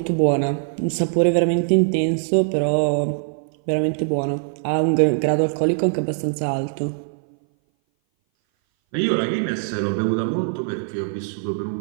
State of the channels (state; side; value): silent; left; 59 dB below the other